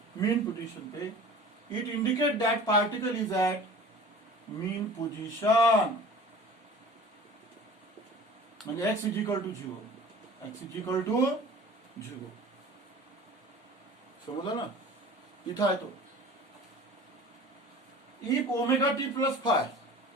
मीन पोजीशन पे। It indicate that particle is at mean position म्हणजे x is equal to 0 x is equal to 0 समझा ना इथं आहे तो। If omega T plus phi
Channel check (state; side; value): normal; both; correlation 0.42